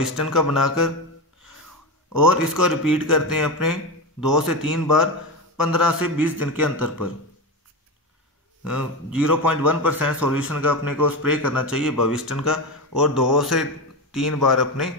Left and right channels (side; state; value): both; normal; correlation 0.18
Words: का बनाकर, और इसको रिपीट करते हैं अपने 2 से 3 बार 15 से 20 दिन के अंतर पर। 0.1% सॉल्यूशन का अपने को स्प्रे करना चाहिए बविस्टन का, और 2 से 3 बार अपने